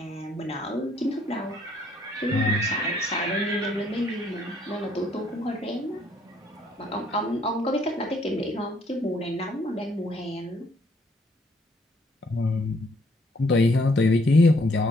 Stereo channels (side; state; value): both; normal; correlation 0.66